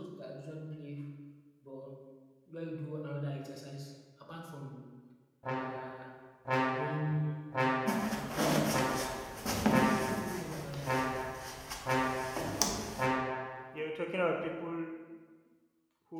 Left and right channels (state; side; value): identical; both; correlation 1.00